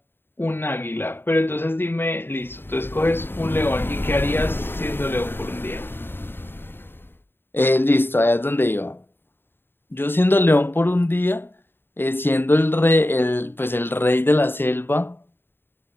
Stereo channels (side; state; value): right; late; 0.10 ms